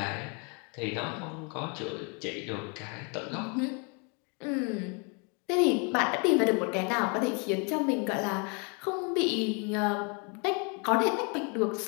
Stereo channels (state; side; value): quieter; right; 34.6 dB